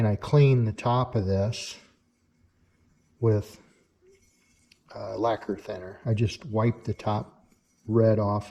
I cleaned the top of this with lacquer thinner. I just wiped the top red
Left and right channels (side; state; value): both; identical; correlation 1.00